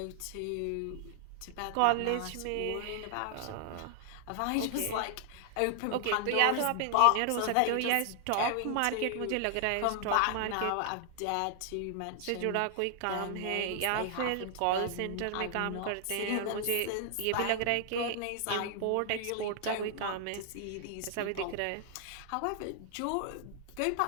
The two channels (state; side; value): different; both; correlation 0.00